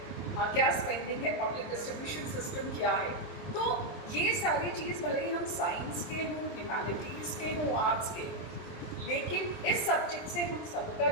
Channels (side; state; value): right; late; 23 ms